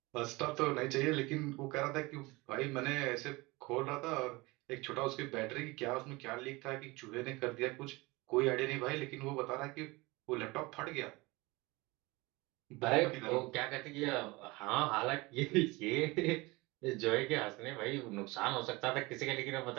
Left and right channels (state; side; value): quieter; left; 23.2 dB